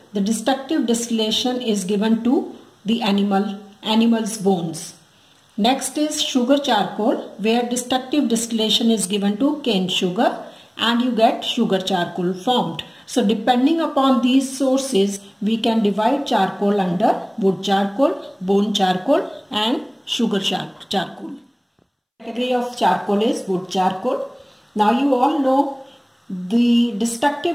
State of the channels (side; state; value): both; identical; correlation 1.00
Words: the destructive distillation is given to the animal's bones. Next is sugar charcoal, where destructive distillation is given to cane sugar and you get sugar charcoal formed. So depending upon these sources, we can divide charcoal under wood charcoal, bone charcoal and sugar charcoal. The category of charcoal is wood charcoal. Now you all know the